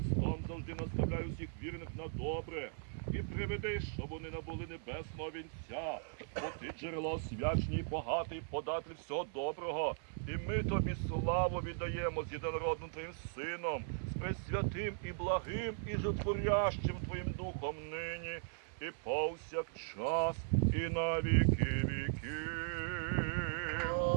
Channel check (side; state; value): left; silent; 52 dB below the other